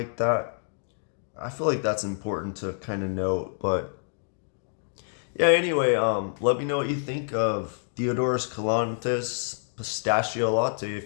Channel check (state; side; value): silent; right; digital silence